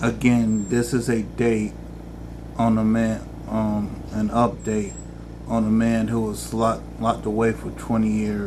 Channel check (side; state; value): both; identical; correlation 1.00